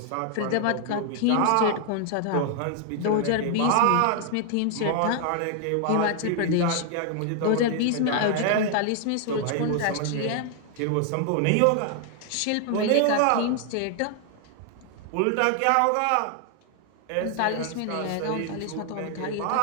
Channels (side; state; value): both; different; correlation 0.00